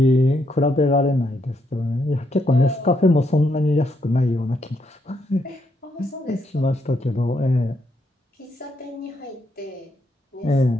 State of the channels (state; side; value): normal; both; correlation 0.77